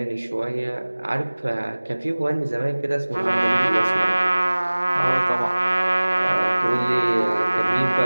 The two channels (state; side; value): inverted; both; correlation -1.00